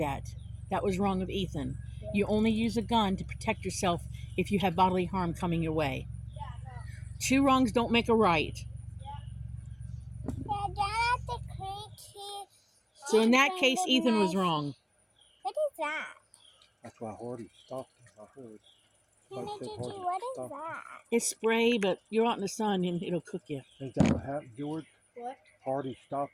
That was wrong of Ethan. Yeah. You only use a gun to protect yourself if you have bodily harm coming your way. Yeah, no. 2 wrongs don't make a right. So in that case, Ethan was wrong. What is that? That's why Hardy stopped him. I heard. Nana Like I said, Gigi, Hardy what is stopped him. that? It's spray, but you're out in the sun and it'll cook you. Ain't that what happened, George? What? Hardy stopped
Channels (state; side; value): identical; both; correlation 1.00